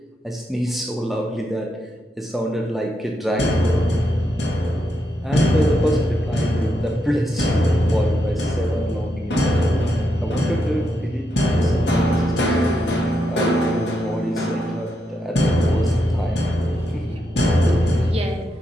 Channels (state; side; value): normal; both; correlation 0.82